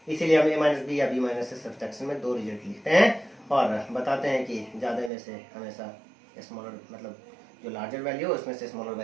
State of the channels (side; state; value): left; drops out; at 5.1 s